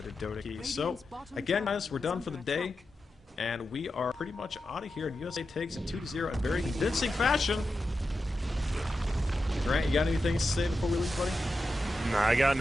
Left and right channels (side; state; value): both; normal; correlation 0.90